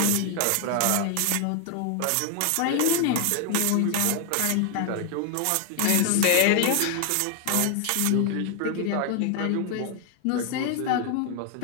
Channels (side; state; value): both; different; correlation 0.00